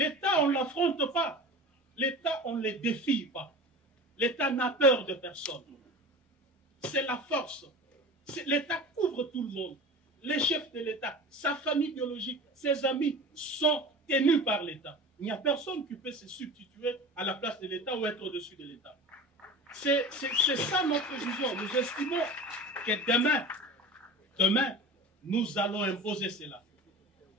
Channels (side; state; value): both; normal; correlation 0.35